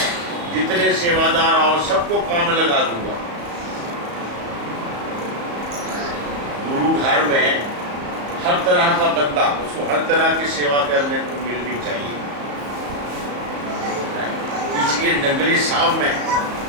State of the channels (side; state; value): left; late; 35 ms